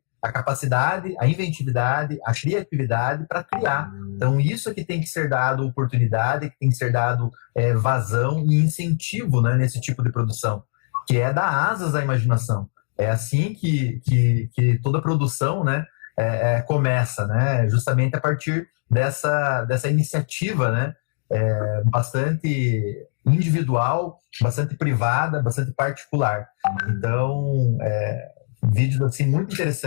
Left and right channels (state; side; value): silent; right; 60 dB below the other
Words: a capacidade, a inventividade, a criatividade para criar. Então, isso é que tem que ser dado oportunidade, que tem que ser dado vazão e incentivo, né, nesse tipo de produção, que é dar asas à imaginação. É assim que toda produção, né, começa, né, justamente a partir dessa iniciativa, né, bastante individual, bastante privada, bastante particular. Então, vídeos assim muito